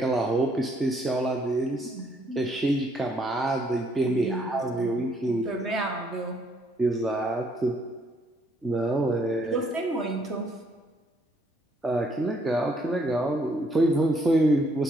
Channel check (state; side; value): normal; both; correlation 0.69